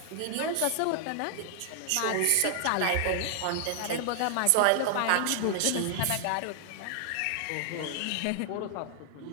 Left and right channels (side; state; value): both; different; correlation 0.00